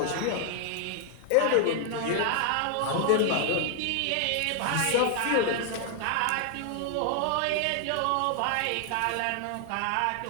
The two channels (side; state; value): both; different; correlation 0.00